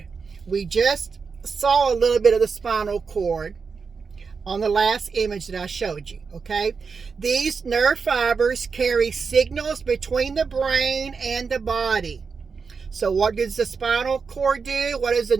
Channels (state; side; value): quieter; left; 5.3 dB